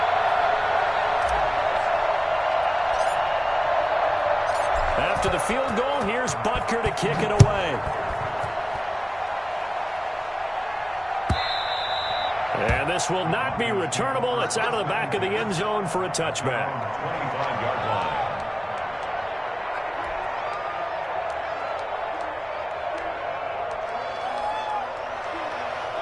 After the field goal, here's Butker to kick it away. And this will not be returnable. It's out of the back of the end zone for a touchback. 25-yard line.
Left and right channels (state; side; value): identical; both; correlation 1.00